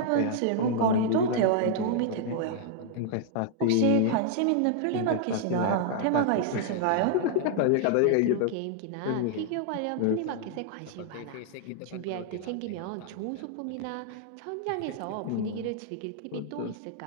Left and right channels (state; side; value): different; both; correlation -0.01